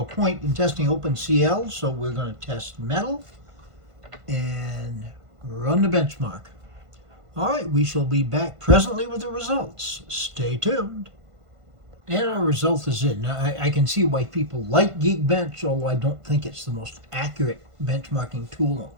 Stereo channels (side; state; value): left; late; 1.5 ms